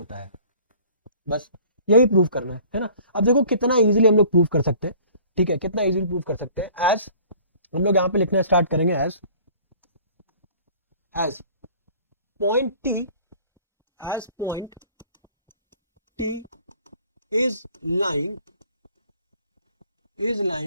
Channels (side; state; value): both; inverted; correlation -0.51